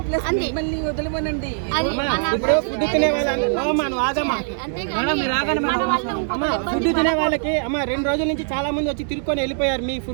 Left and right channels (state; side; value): silent; left; 64 dB below the other